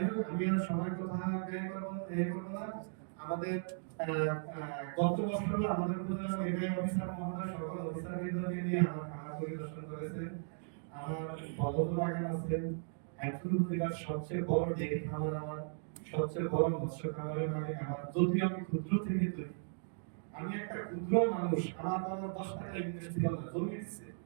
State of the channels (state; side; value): silent; left; digital silence